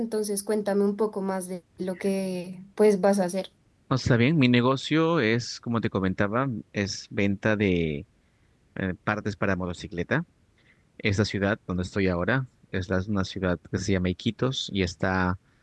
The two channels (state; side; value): identical; both; correlation 1.00